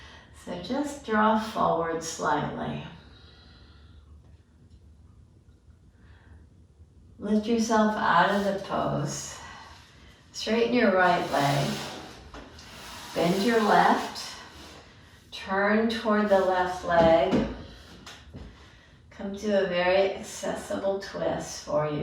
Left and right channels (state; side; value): identical; both; correlation 1.00